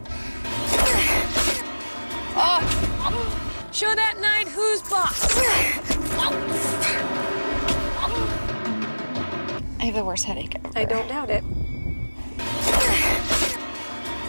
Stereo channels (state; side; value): inverted; both; correlation -1.00